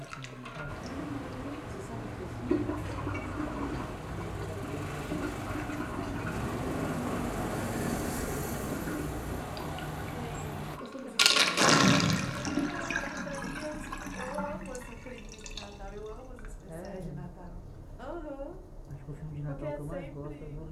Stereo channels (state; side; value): identical; both; correlation 1.00